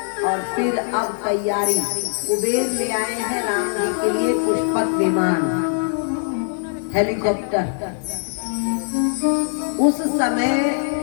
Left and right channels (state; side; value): silent; right; digital silence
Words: और फिर अब तैयारी कुबेर ले आए हैं राम जी के लिए पुष्पक विमान, हेलीकॉप्टर। उस समय